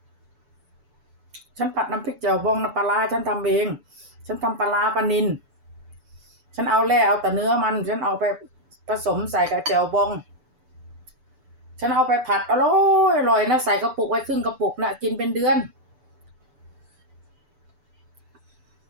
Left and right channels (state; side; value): late; left; 6.9 ms